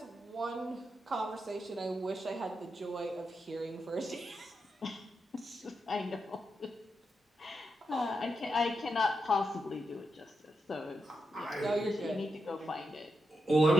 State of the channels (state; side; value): normal; both; correlation 0.86